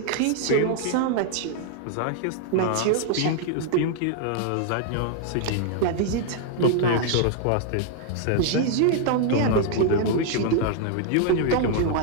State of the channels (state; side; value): different; both; correlation 0.00